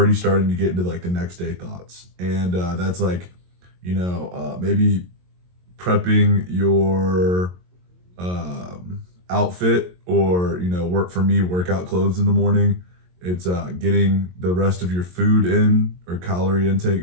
starting to get into like the next day thoughts, and that's like, maybe prepping your outfit, or work for me workout clothes in the morning. It's getting the rest of your food in or calorie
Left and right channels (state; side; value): late; left; 22 ms